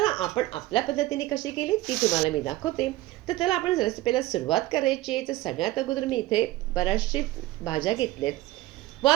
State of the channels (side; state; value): left; quieter; 17.1 dB